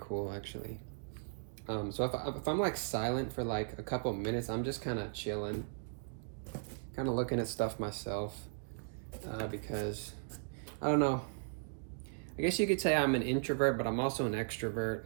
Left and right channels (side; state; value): left; silent; digital silence